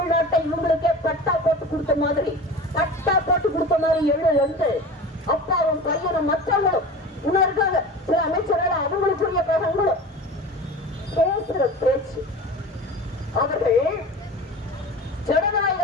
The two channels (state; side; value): normal; both; correlation 0.35